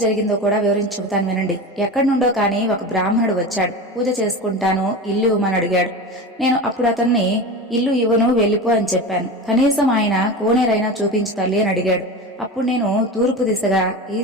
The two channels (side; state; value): both; normal; correlation 0.27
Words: జరిగిందో కూడా వివరించి చెబుతాను వినండి. ఎక్కడి నుండో కానీ ఒక బ్రాహ్మణుడు వచ్చాడు, పూజ చేసుకుంటాను, ఇల్లు ఇవ్వమని అడిగాడు. నేను అప్పుడు అతన్ని ఇల్లు ఇవ్వను, వెళ్ళిపో అని చెప్పాను. కనీసం ఆయన కోనేరైనా చూపించు తల్లి అని అడిగాడు. అప్పుడు నేను తూర్పు దిశగా